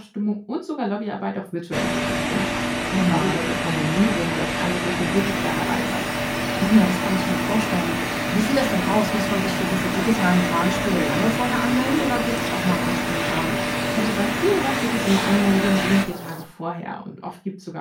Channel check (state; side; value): identical; both; correlation 1.00